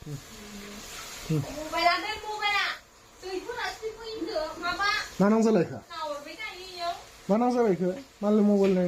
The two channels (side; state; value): both; identical; correlation 1.00